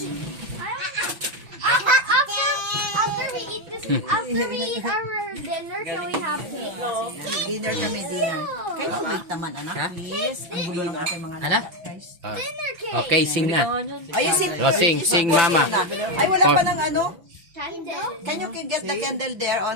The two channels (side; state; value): left; late; 5.9 ms